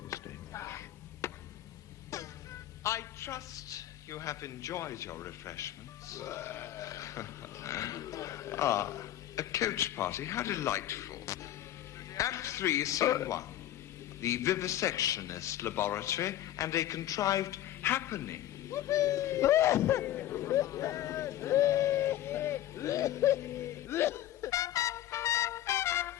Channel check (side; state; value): right; quieter; 12.9 dB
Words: the stage. I trust you have enjoyed your refreshments. A coach party, how delightful. Act 3, Scene 1. The vivisectionist laboratory and a contrived happening. We